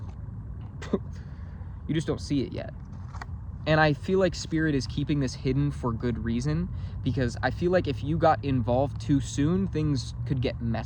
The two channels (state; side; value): identical; both; correlation 1.00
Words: You just don't see it yet. And I feel like Spirit is keeping this hidden for good reason, because I feel like if you got involved too soon, things could get